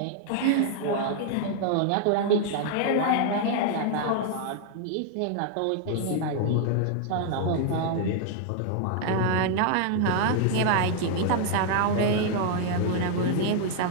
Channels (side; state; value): both; different; correlation 0.00